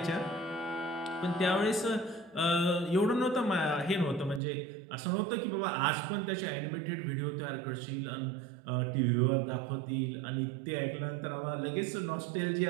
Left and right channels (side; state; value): left; drops out; at 4.4 s